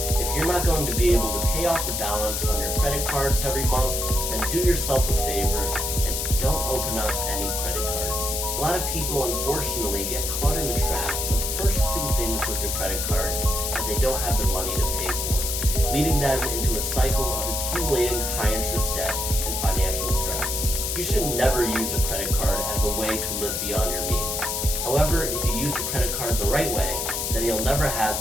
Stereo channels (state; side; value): noise; left; hiss, 1 dB below the sound